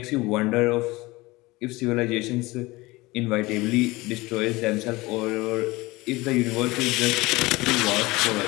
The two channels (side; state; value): right; quieter; 21.4 dB